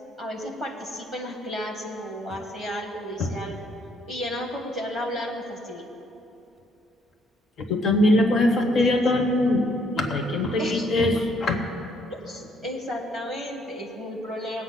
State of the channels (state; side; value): normal; both; correlation 0.68